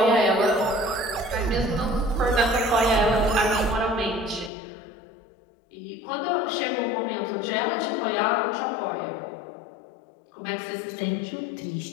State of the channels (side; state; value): right; drops out; at 4.5 s